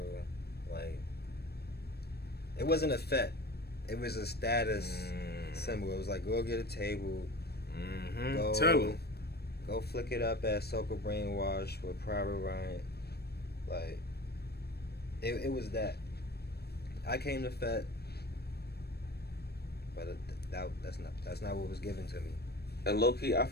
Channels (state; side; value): late; right; 0.47 ms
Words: like, it wasn't a fet. It was a status symbol. It was like, go get a table. Tell him. Go flick it up at Soca Brainwash with Private Ryan. Like, it was that. I came to fet, but that's not what was given to me. And low key, I